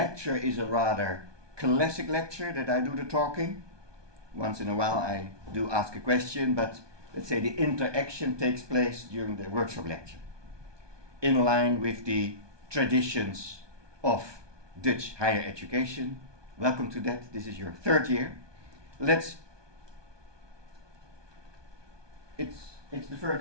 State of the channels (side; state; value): left; late; 1.2 ms